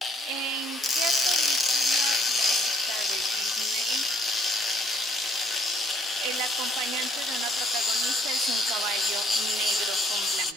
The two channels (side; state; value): both; normal; correlation 0.66